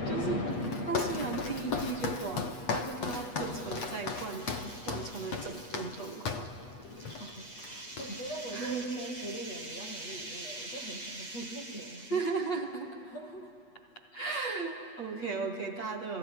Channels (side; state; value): right; late; 8.3 ms